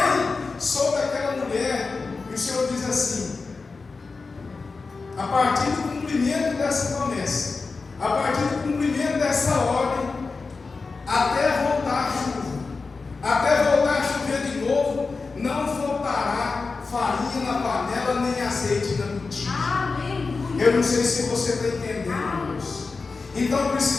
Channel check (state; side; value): quieter; right; 4.2 dB